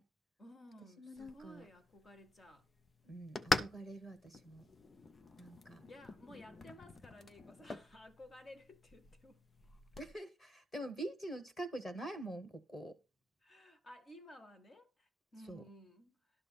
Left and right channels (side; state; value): both; normal; correlation 0.84